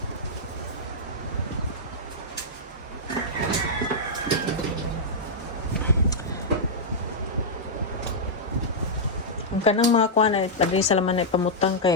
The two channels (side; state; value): both; normal; correlation -0.09